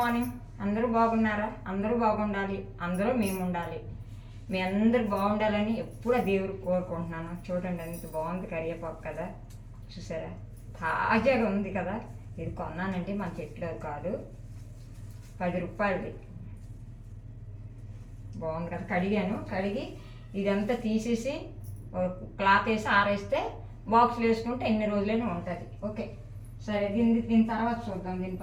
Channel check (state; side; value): identical; both; correlation 1.00